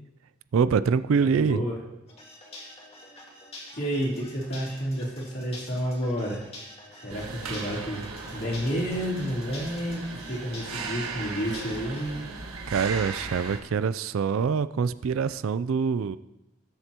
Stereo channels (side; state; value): left; quieter; 3.5 dB